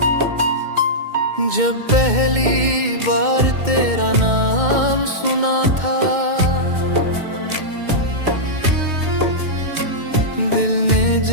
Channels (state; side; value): late; left; 2.2 ms